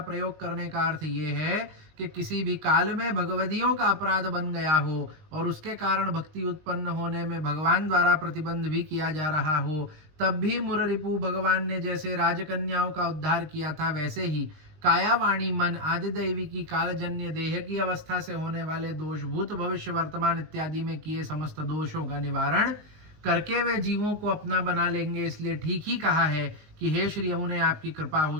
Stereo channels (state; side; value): late; left; 19 ms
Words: करने का अर्थ ये है कि किसी भी काल में भगवदियों का अपराध बन गया हो और उसके कारण भक्ति उत्पन्न होने में भगवान द्वारा प्रतिबंध भी किया जा रहा हो, तब भी मुररिपु भगवान ने जैसे राजकन्याओं का उद्धार किया था वैसे ही काया वाणी मन आदि दैवी की कालजन्य देह की अवस्था से होने वाले दोष भूत भविष्य वर्तमान इत्यादि में किए समस्त दोषों का निवारण करके वे जीवों को अपना बना लेंगे। इसलिए ठीक ही कहा है कि हे श्री यमुने आपकी कृपा हो